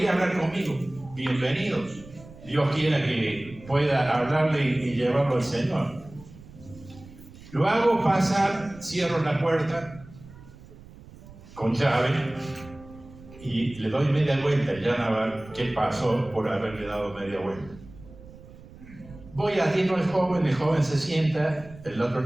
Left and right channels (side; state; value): right; noise; rumble, 20 dB below the sound